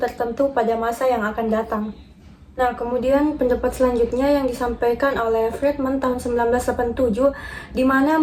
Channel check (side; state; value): both; identical; correlation 1.00